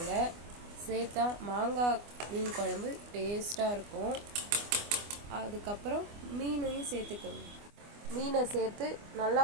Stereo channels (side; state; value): left; late; 24 ms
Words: சேர்த்தா மாங்காய் மீன் குழம்பு டேஸ்ட்டாக இருக்கும். அதுக்கப்புறம் மீனையும் சேர்த்துக்கோங்க. மீனை சேர்த்து நல்லா